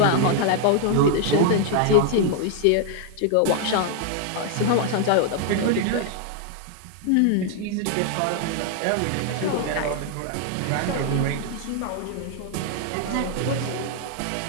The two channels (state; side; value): different; both; correlation 0.00